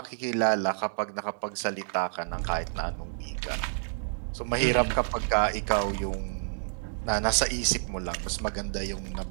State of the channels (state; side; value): silent; left; digital silence